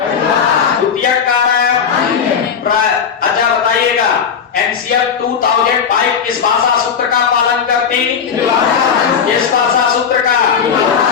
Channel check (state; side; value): quieter; right; 7.0 dB